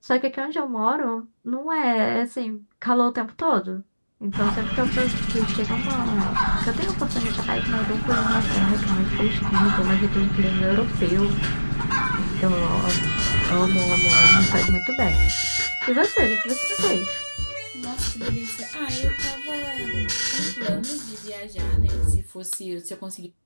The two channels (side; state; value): both; inverted; correlation -1.00